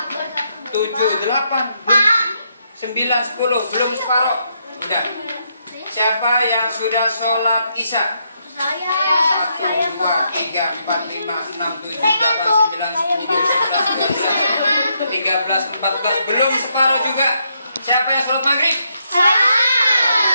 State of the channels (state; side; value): inverted; both; correlation -0.78